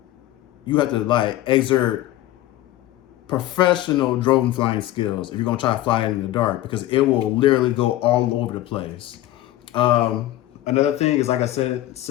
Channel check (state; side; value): quieter; right; 15.0 dB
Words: exert professional drone flying skills if you're gonna try to fly it in the dark, because it will literally go all over the place. Another thing is, like I said,